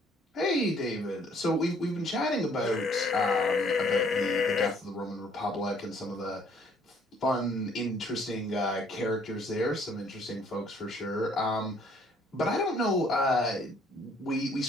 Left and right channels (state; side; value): normal; both; correlation 0.62